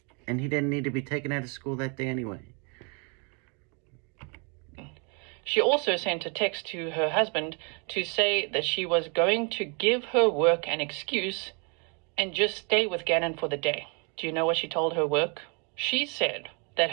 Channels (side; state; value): left; quieter; 34.6 dB